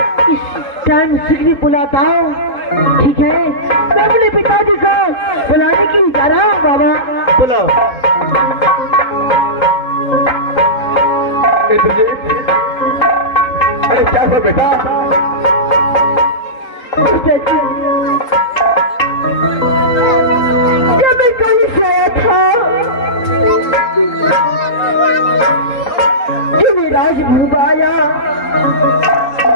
इस टाइम शीघ्र बुलाता हूँ। ठीक है, मैं अपने पिताजी को बुलाने के लिए जा रहा हूँ। बाबा बुलाओ। अरे क्या हुआ बेटा? क्या मैं कल से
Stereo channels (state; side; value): late; right; 3.8 ms